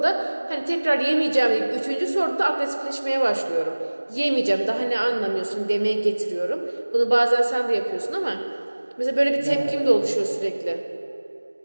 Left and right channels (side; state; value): both; inverted; correlation -1.00